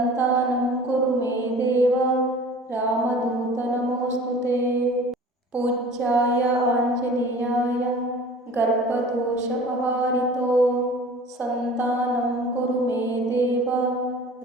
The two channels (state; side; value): normal; both; correlation 0.43